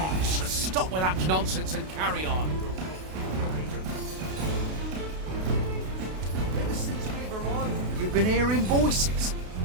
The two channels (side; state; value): left; late; 32 ms